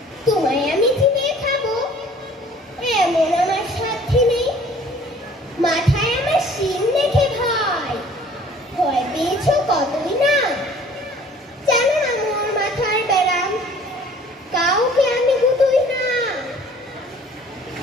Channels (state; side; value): normal; both; correlation 0.52